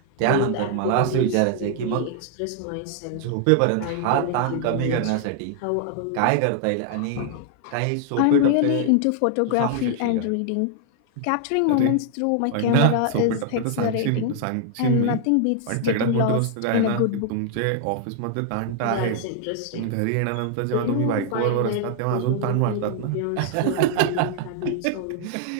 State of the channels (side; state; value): both; different; correlation 0.00